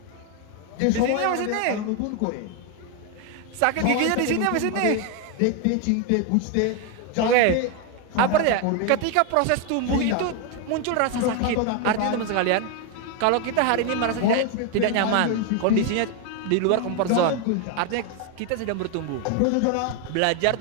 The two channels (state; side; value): different; both; correlation 0.01